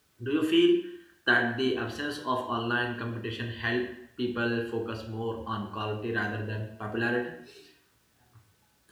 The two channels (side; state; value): both; identical; correlation 1.00